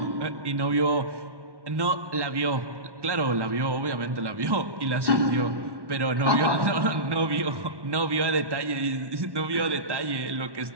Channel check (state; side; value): late; left; 1.1 ms